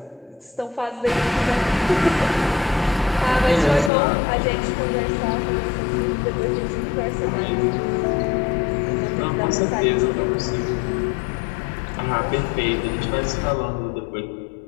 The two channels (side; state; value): right; drops out; at 3.9 s